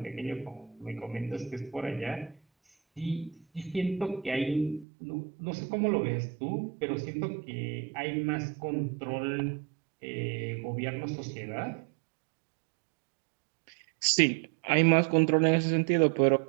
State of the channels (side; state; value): left; drops out; at 4.9 s